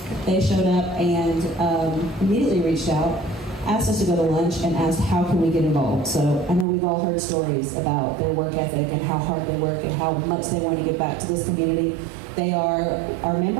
They showed up and immediately reached out, asked us to go to lunch, and asked how can we get involved. So I know we've all heard stories about their work ethic and how hard they work and how much they want to give back to this community. They are our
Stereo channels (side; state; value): left; drops out; at 6.7 s